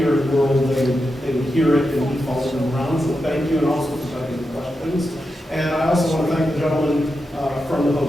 in the world, they would hear it and he followed them around. So thank you, and also for typing the questions. And I also want to thank the gentleman from the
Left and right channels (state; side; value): normal; both; correlation 0.88